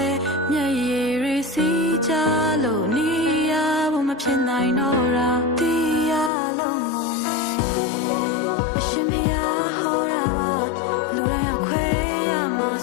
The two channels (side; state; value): right; drops out; at 6.3 s